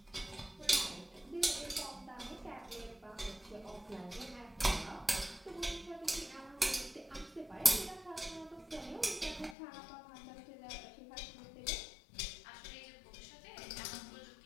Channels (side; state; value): right; drops out; at 9.6 s